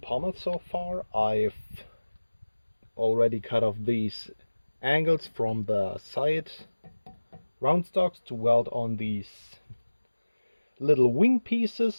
so far. I've already cut off these angles from the side round stocks to weld on these little wing pieces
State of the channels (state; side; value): inverted; both; correlation -1.00